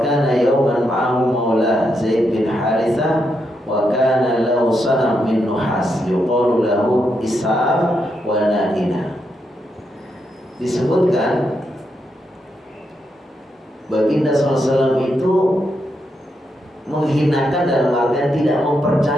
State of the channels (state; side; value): normal; both; correlation 0.82